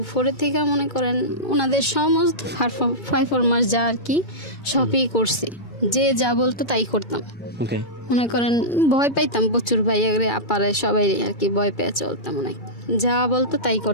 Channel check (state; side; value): late; right; 2.3 ms